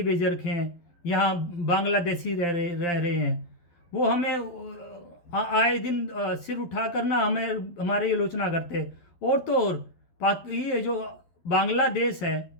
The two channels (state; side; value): late; right; 12 ms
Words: भेज रखे हैं। यहाँ बांग्लादेशी रह रहे हैं। वो हमें आए दिन सिर उठा कर ना हमें हमारी आलोचना करते हैं। और तो और ये जो बांग्लादेश है,